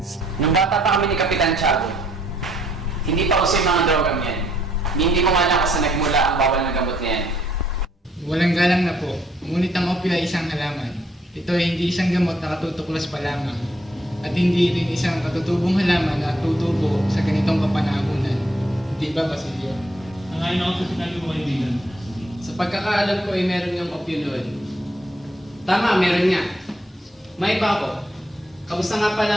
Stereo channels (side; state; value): both; normal; correlation 0.69